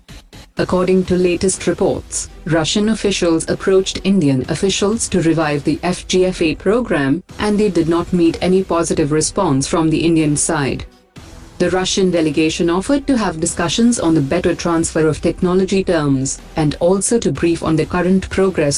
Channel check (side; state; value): both; identical; correlation 1.00